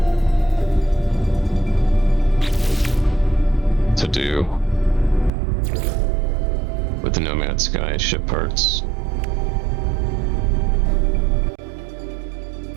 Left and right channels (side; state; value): left; drops out; at 5.3 s